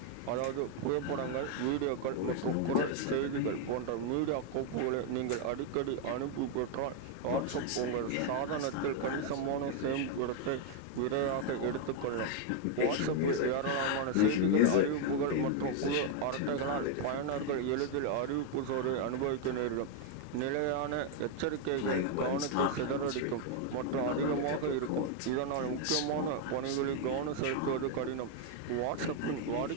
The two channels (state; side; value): different; both; correlation 0.01